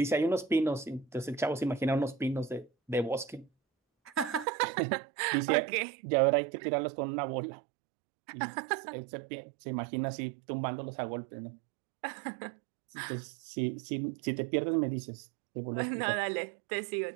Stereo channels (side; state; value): left; drops out; at 4.5 s